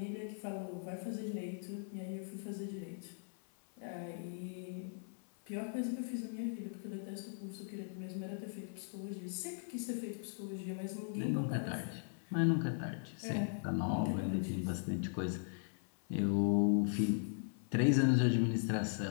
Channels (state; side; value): silent; right; 52 dB below the other